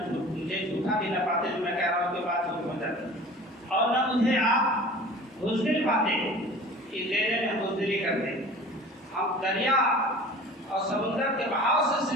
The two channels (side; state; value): both; normal; correlation 0.42